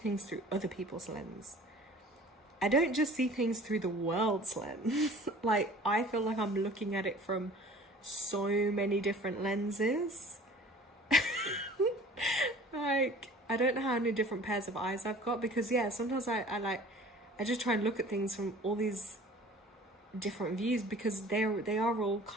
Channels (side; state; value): both; normal; correlation 0.47